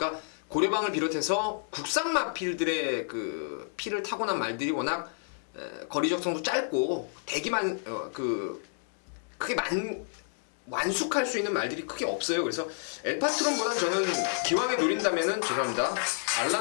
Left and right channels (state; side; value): silent; right; 58 dB below the other